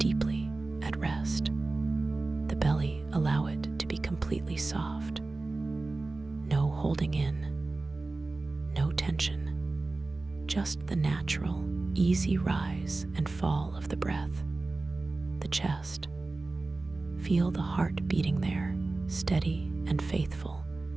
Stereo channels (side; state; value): left; quieter; 3.3 dB